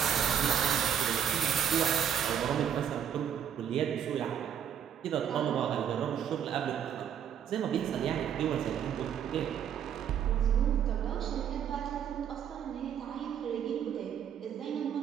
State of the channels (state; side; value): quieter; left; 8.8 dB